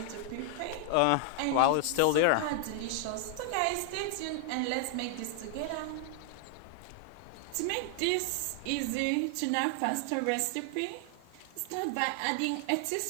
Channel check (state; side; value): different; both; correlation 0.00